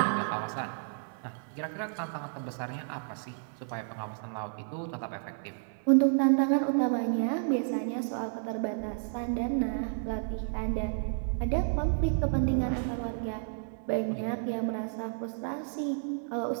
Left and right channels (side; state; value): left; silent; digital silence